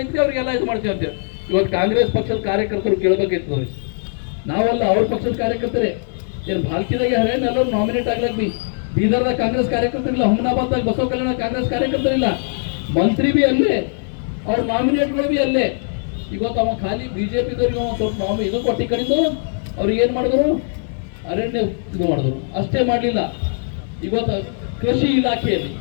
ಅವ್ರಿಗೆಲ್ಲ ಇದು ಮಾಡ್ತೀವಿ ಅಂತೇಳಿ. ಇವತ್ತು ಕಾಂಗ್ರೆಸ್ ಪಕ್ಷದ ಕಾರ್ಯಕರ್ತರು ಕೇಳಬೇಕಿತ್ತು ಅವ್ರಿಗೆ. ನಾವಲ್ಲ, ಅವ್ರ ಪಕ್ಷದ ಕಾರ್ಯಕರ್ತರೇ. ಏನು ಭಾಲ್ಕಿದಾಗೆ ಹರೇನ್ ಎಲ್ಲರೂ ನಾಮಿನೇಟ್ ಆಗ್ಲಕ್ ಬೀದರ್ದಾಗ ಕಾಂಗ್ರೆಸ್ ಕಾರ್ಯಕರ್ತರಿಲ್ಲ, ಹುಮನಾಬಾದ್ದಾಗ ಬಸವ ಕಲ್ಯಾಣ ಕಾಂಗ್ರೆಸ್ ಕಾರ್ಯಕರ್ತರಿಲ್ಲ, ಮಂತ್ರಿ ಬಿ ಅಲ್ಲೇ, ಅವ್ರ ನಾಮಿನೇಟ್ಗಳು ಬಿ ಅಲ್ಲೇ. ಇವತ್ತು ಅವ ಖಾಲಿ ಬಿಜೆಪಿದವ್ರಿಗೆ ಅವ ಸ್ವಲ್ಪ ಇದು ಕೊಟ್ಟಿ ಕಡಿದು ಅವ್ರಿಗೆ ಏನ್ ಮಾಡಿದ್ರು, ಅರಣ್ಯ ಇದು ಮಾಡಿದ್ರು. ಅಷ್ಟೇ ಮಾಡಲಿಲ್ಲ, ಇವತ್ತು ಕೃಷಿ ಇಲಾಖೆಯಲ್ಲಿ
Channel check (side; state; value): right; silent; 63 dB below the other